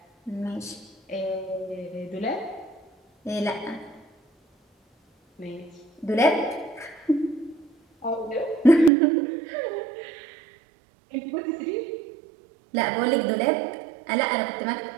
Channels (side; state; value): left; drops out; at 8.9 s